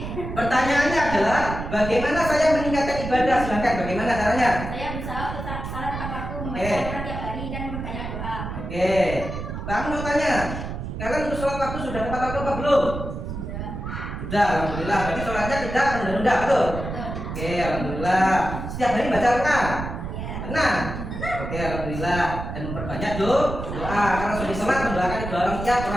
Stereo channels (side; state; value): right; noise; rumble, 7 dB below the sound